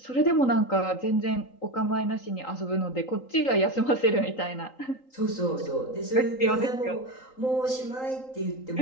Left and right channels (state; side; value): late; right; 3.8 ms